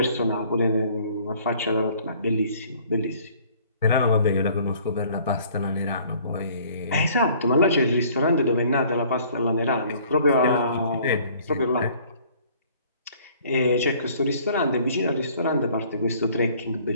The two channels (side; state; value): both; inverted; correlation -0.56